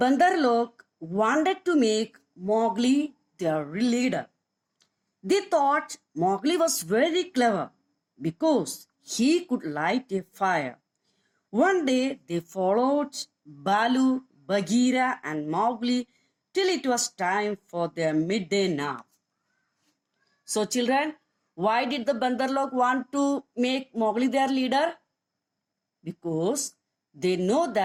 wanted to make Mowgli their leader. They thought Mowgli was very clever because he could light a fire. One day they followed Baloo, Bagheera and Mowgli till it was time for their midday nap. So children, why did the Bandar want to make Mowgli their leader? Because they know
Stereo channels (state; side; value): identical; both; correlation 1.00